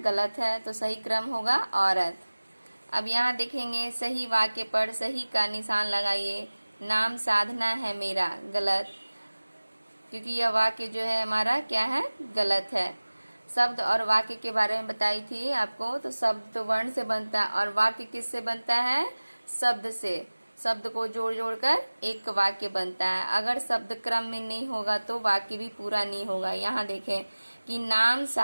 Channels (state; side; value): inverted; both; correlation -1.00